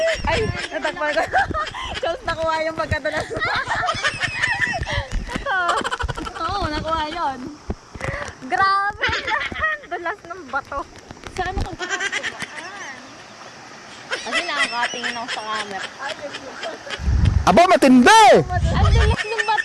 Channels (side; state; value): both; identical; correlation 1.00